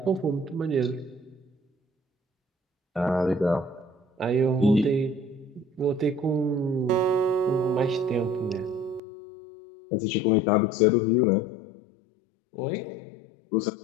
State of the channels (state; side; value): drops out; right; at 9.0 s